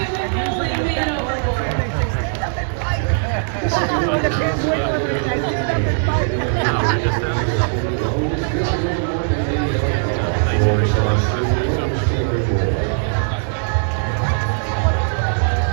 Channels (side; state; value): left; silent; 57 dB below the other